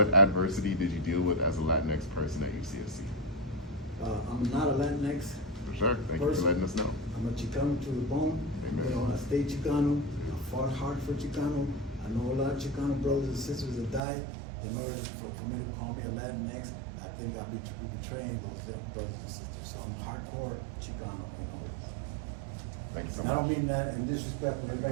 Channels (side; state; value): left; drops out; at 14.0 s